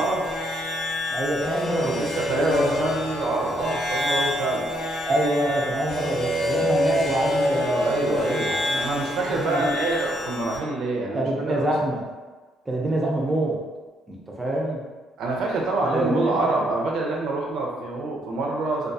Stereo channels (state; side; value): normal; both; correlation 0.73